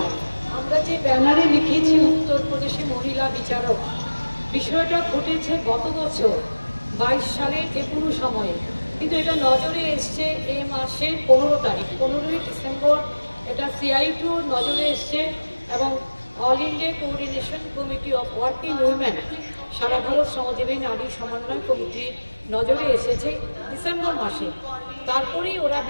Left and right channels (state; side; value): inverted; both; correlation -1.00